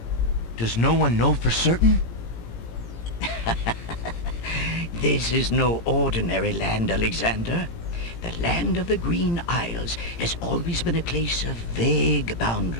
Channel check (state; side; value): late; right; 17 ms